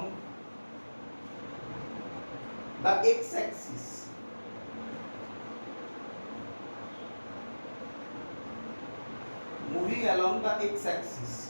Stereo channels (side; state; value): both; inverted; correlation -1.00